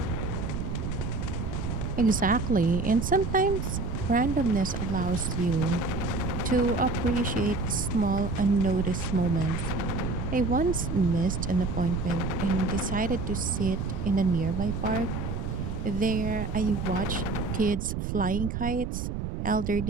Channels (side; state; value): right; noise; rumble, 3 dB below the sound